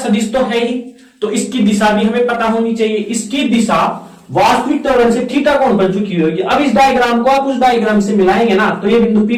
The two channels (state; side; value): identical; both; correlation 1.00